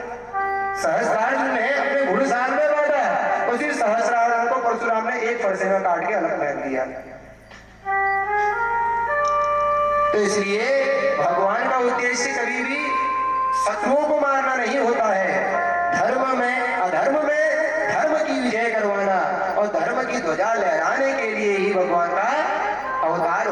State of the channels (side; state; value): both; identical; correlation 1.00